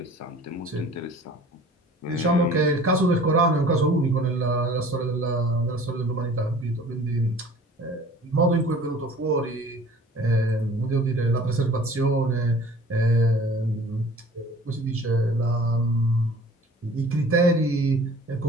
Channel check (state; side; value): normal; both; correlation 0.47